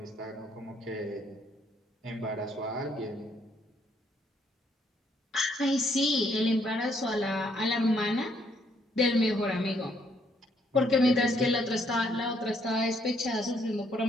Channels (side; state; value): both; normal; correlation 0.70